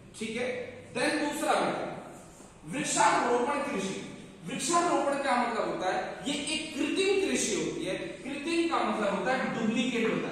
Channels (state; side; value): identical; both; correlation 1.00